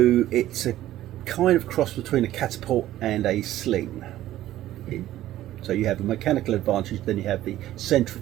it's a kind of cross between a catapult and a sling. So you have a mechanical advantage, then you have the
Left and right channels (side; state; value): left; quieter; 14.0 dB